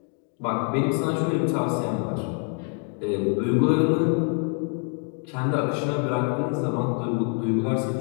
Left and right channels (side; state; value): right; quieter; 40.0 dB